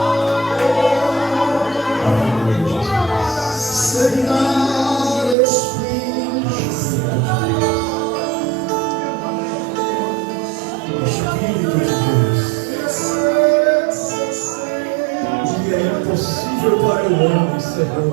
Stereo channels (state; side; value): drops out; left; at 5.4 s